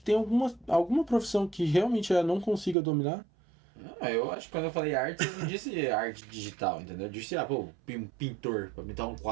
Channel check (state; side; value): drops out; left; at 2.8 s